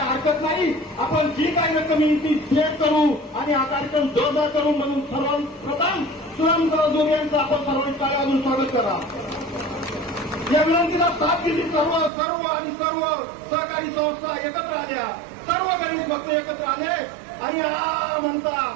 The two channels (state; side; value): drops out; left; at 12.1 s